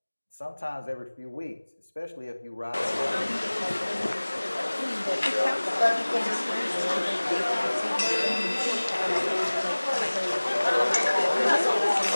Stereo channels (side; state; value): both; inverted; correlation -1.00